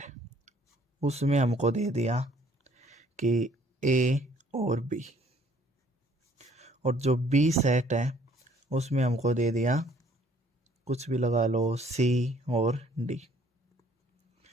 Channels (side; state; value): both; normal; correlation 0.61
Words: उसमें हमको दे दिया कि ए और बी, और जो बी सेट है उसमें हमको दे दिया कुछ भी लगा लो सी और डी।